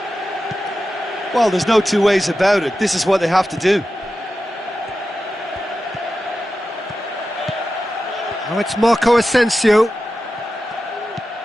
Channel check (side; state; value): both; normal; correlation 0.92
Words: Well, there's no two ways about it. This is what they have to do. Now it's Marco Asensio.